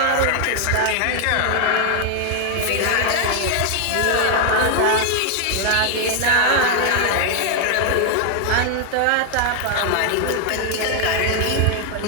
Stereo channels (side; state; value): both; different; correlation 0.00